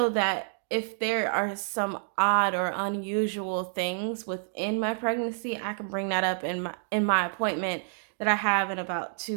that if there are some odd or unusual things within my pregnancy, I can bring that up in my appointment that I have in about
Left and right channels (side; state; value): left; silent; digital silence